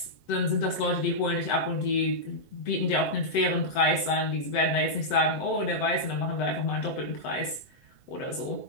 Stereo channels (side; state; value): right; late; 7.9 ms